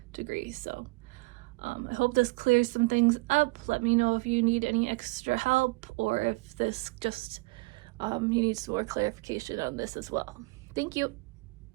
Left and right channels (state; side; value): quieter; left; 26.1 dB